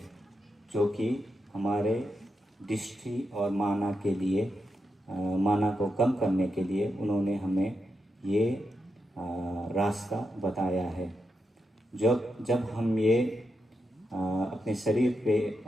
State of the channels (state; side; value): normal; both; correlation 0.86